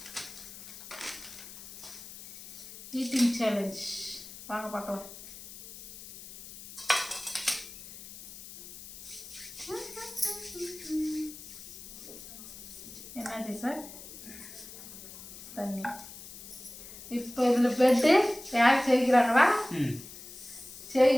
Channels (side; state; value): left; noise; hiss, 14 dB below the sound